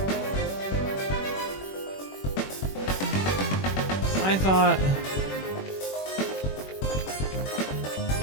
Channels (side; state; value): right; late; 21 ms